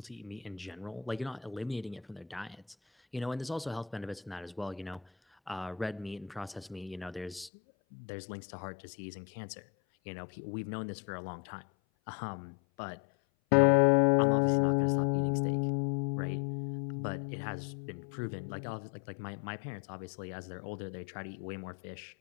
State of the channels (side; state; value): right; drops out; at 7.5 s